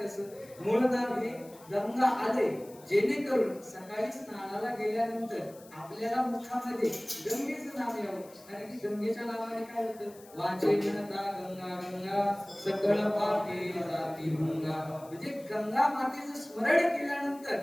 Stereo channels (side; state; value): left; noise; hiss, 23 dB below the sound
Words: मूळ नाव हे गंगा आलय, जेणेकरून सकाळी स्नानाला गेल्यानंतर आपल्याला मुखामध्ये गंगेचं नाव यावं. कारण की गंगेच्या नावाने काय होतं, वाचे म्हणता गंगा गंगा सकळ पापे जाती भंगा. म्हणजे गंगा मातेचं स्मरण केल्यानंतर